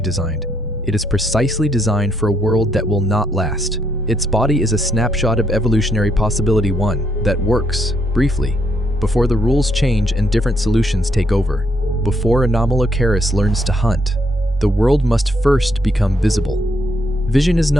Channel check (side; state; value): both; normal; correlation 0.74